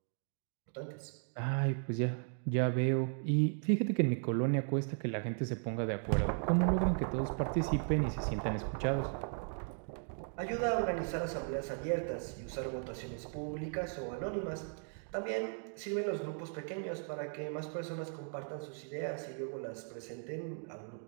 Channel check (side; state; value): left; silent; 53 dB below the other